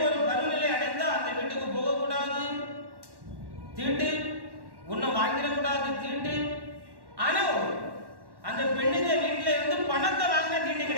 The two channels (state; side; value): late; left; 1.1 ms